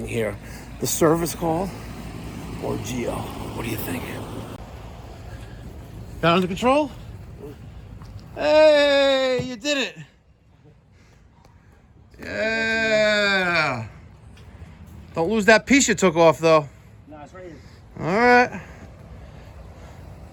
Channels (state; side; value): identical; both; correlation 1.00